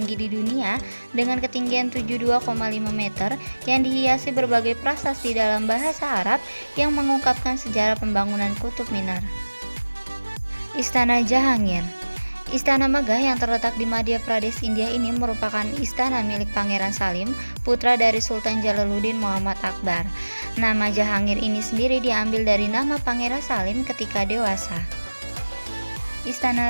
di dunia dengan ketinggian 72,5 meter yang dihiasi berbagai prasasti dalam bahasa Arab yang mengungkapkan sejarah pembangunan Kutub Minar. Istana Jahangir. Istana megah yang terletak di Madhya Pradesh, India ini merupakan istana milik Pangeran Salim, putra dari Sultan Jalaluddin Muhammad Akbar. Nama Jahangir ini sendiri diambil dari nama Pangeran Salim ketika dewasa.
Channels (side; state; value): both; inverted; correlation -1.00